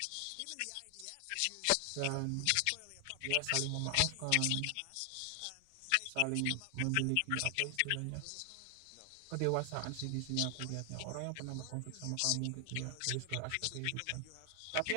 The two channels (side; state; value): both; different; correlation 0.00